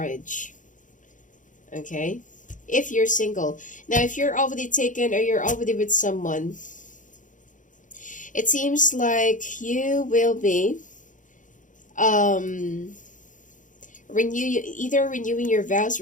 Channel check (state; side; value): late; right; 0.37 ms